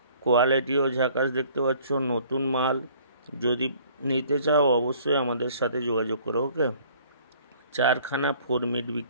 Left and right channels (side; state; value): both; inverted; correlation -0.55